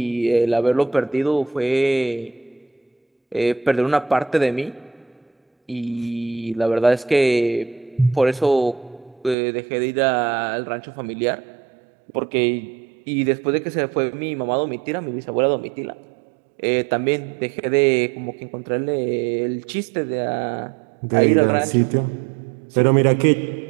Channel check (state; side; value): drops out; left; at 9.3 s